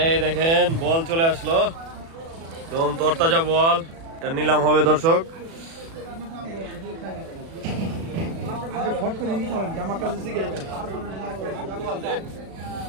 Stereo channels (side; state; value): left; late; 36 ms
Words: দেখেন বল চলে আসলো, একদম তরতাজা বল। এটা নিলাম হবে দর্শক।